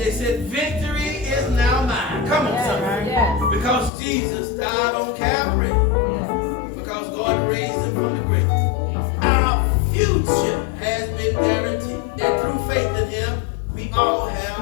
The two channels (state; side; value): drops out; right; at 3.9 s